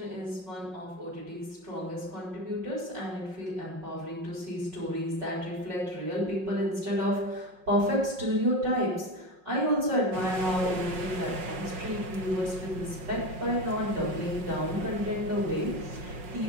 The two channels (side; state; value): left; late; 5.5 ms